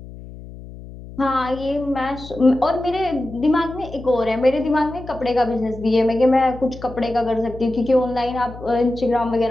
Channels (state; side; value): noise; left; hum, 15 dB below the sound